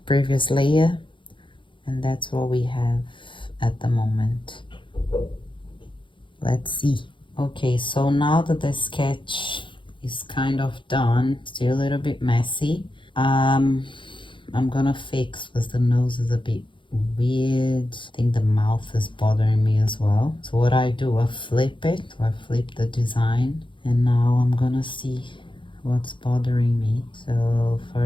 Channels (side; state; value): right; late; 0.24 ms